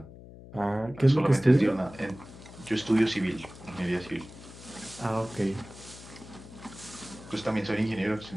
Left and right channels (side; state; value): left; noise; hum, 17 dB below the sound